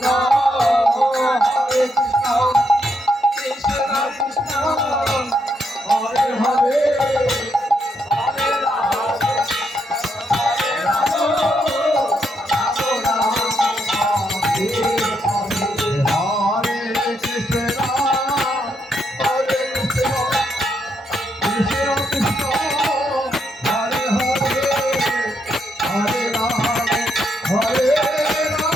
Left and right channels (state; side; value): normal; both; correlation 0.78